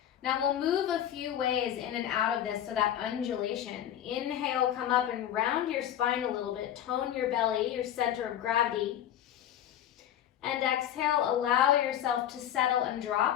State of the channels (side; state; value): right; quieter; 10.9 dB